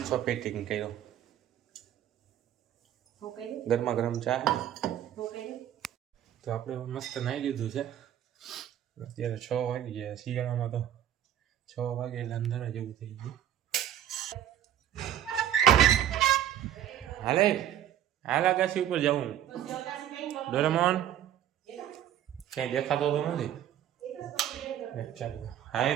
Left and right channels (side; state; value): left; quieter; 11.0 dB